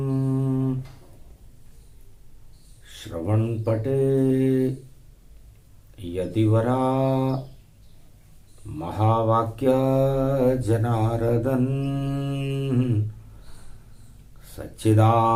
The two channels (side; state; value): both; identical; correlation 1.00